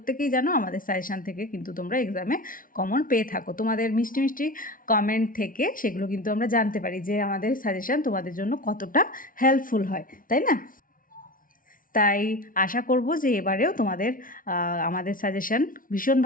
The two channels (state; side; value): late; right; 0.40 ms